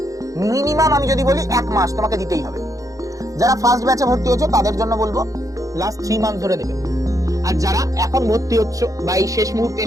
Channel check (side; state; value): left; late; 0.16 ms